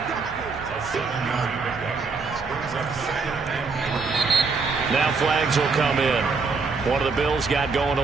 Now flags will come in. One of the Bills got going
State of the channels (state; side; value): quieter; left; 4.5 dB